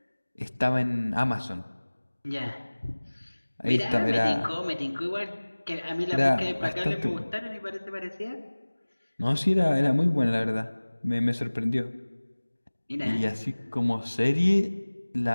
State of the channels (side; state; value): both; inverted; correlation -1.00